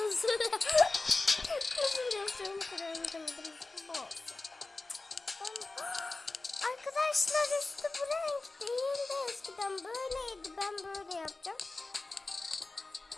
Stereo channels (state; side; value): quieter; right; 3.3 dB